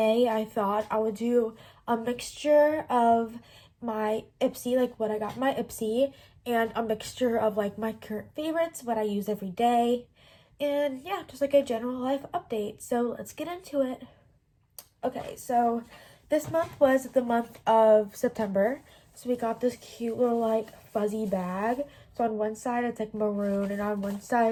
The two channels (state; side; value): identical; both; correlation 1.00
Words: I thought I would do a mixture of my Ipsy, like what I got in my Ipsy, and a mixture of like my current favorites, what I use every day, and yeah, just like a general life update. So let's get into it. Okay, so this month was the month of September. So we got this cute little like fuzzy bag. So on one side it's like maroon and on one